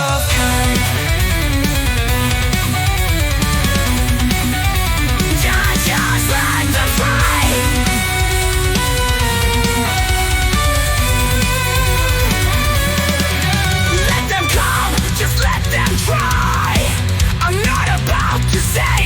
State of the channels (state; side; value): identical; both; correlation 1.00